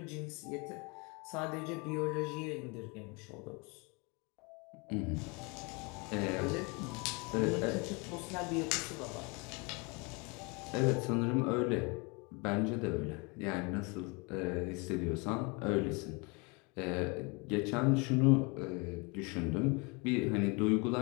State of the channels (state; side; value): quieter; right; 29.7 dB